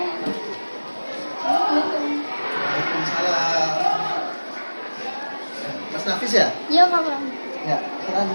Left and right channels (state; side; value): inverted; both; correlation -1.00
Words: Mas Nafis ya? Iya Pak Bram. Ya, silakan